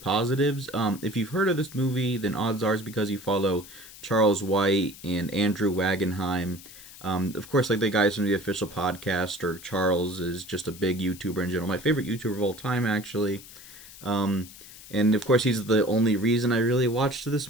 If you've heard of this movie, then odds are it's because you follow Charles White and Andrew Wagenheim. Of course, like the guys from the official podcast, or Charles is just a big YouTuber in general. My favorite YouTuber of all time, actually. Um, and of course, he's the only reason I really watched this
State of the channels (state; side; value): noise; left; hiss, 18 dB below the sound